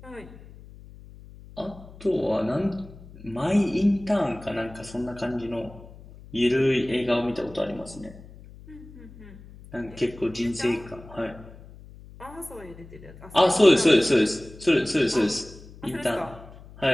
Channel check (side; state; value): left; noise; hum, 19 dB below the sound